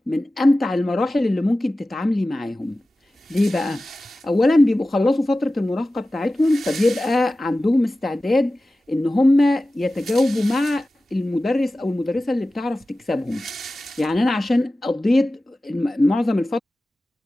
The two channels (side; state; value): both; normal; correlation 0.95